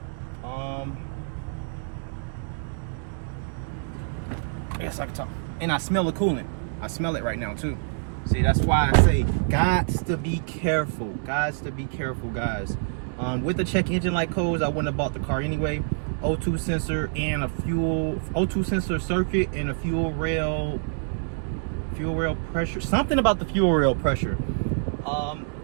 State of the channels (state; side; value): silent; left; digital silence